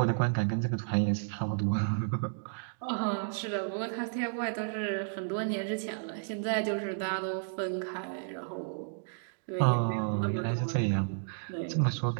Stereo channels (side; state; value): left; silent; digital silence